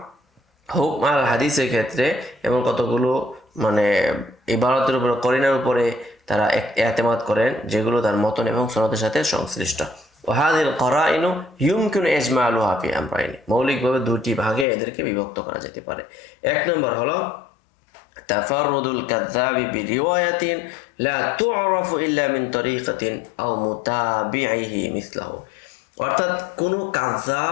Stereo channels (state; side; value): drops out; right; at 14.7 s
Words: হুকম আল হাদিসের ক্ষেত্রে এমন কতগুলো ইবারতের উপরে, করিনার উপরে তারা এতেমাদ করেন যেগুলো তার মতন এবং সনদের সাথে সংশ্লিষ্ট। ওয়াহাদিল করাইনু ইউমকিনু ইজমালুহা ফি আমরাইনি, মৌলিকভাবে দুটি ভাগে এদেরকে বিভক্ত করা যেতে পারে। এক নম্বর হলো তাফাররুদুল কাযযাবি বিরিওয়ায়াতিন লা তু'রাফু ইল্লা মিন তরিকাতিন আও মুতাবিইহি মিসলাহু, অর্থাৎ কোনো